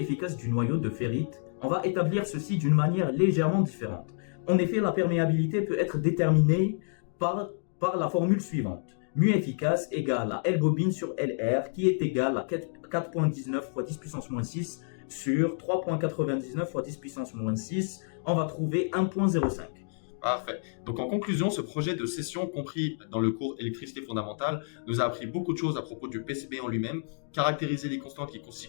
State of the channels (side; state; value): right; silent; digital silence